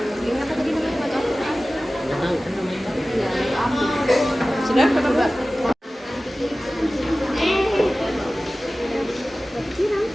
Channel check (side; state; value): both; normal; correlation 0.97